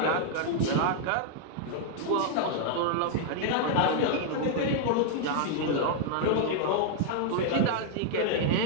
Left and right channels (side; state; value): both; different; correlation 0.00